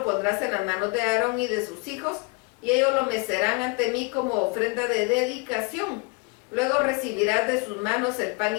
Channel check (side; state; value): right; quieter; 29.0 dB